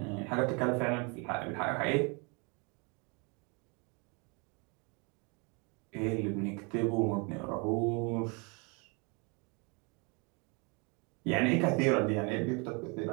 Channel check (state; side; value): quieter; left; 31.9 dB